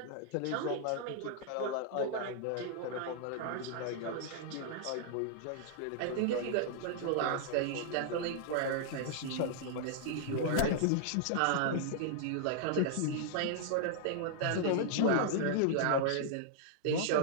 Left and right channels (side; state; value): both; different; correlation -0.01